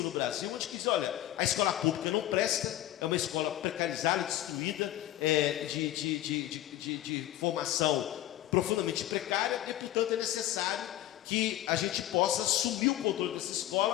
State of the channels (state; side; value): quieter; right; 14.0 dB